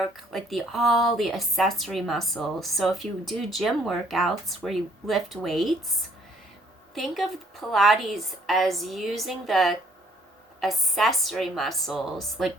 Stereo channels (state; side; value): normal; both; correlation 0.62